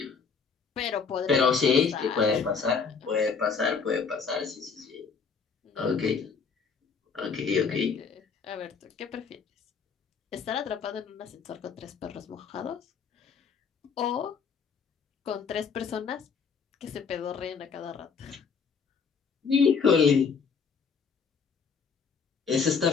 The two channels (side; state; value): right; quieter; 5.7 dB